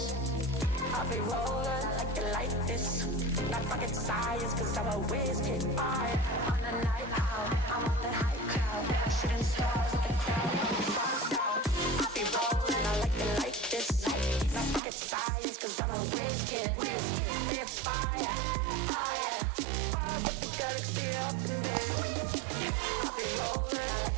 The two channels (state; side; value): drops out; left; at 14.8 s